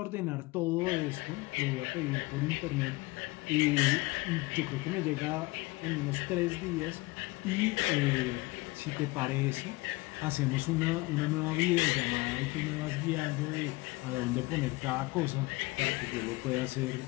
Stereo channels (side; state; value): right; quieter; 22.6 dB